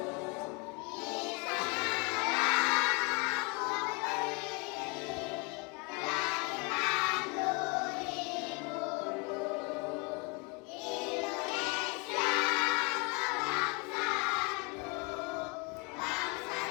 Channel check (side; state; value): right; quieter; 31.1 dB